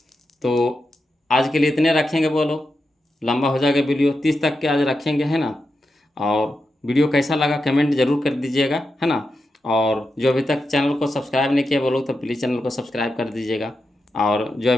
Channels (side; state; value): both; normal; correlation 0.88